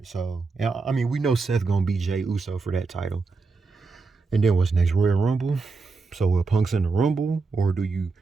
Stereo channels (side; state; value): left; quieter; 4.2 dB